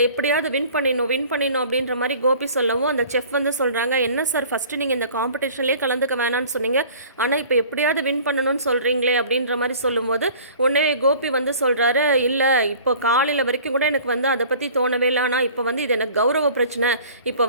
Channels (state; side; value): inverted; both; correlation -0.47